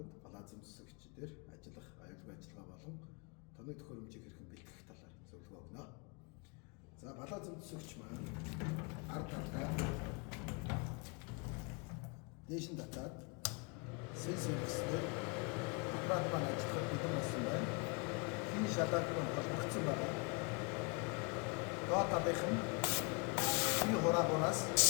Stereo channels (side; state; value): right; quieter; 32.2 dB